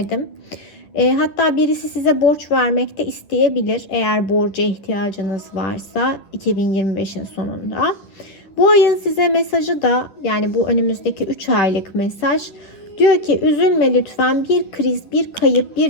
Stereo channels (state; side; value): late; right; 10 ms